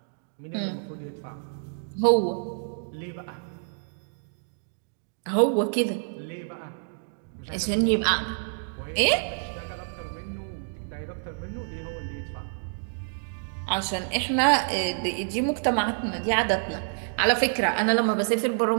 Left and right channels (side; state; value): left; silent; digital silence